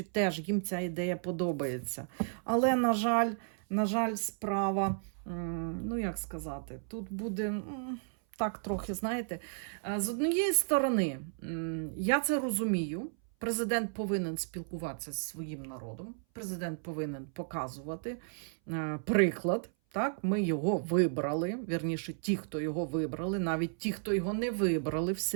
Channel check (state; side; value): silent; left; 55 dB below the other